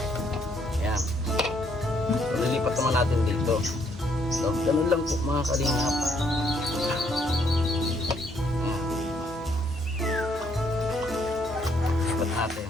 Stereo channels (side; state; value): both; normal; correlation 0.70